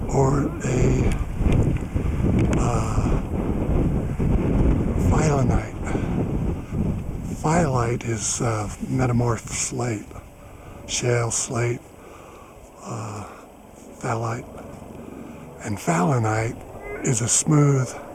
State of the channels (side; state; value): both; identical; correlation 1.00